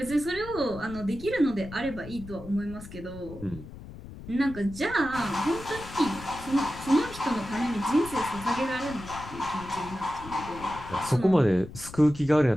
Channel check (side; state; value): left; noise; rumble, 15 dB below the sound